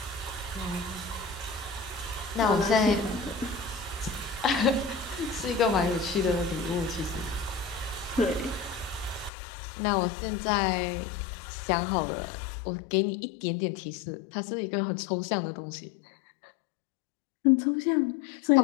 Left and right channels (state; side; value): drops out; right; at 9.3 s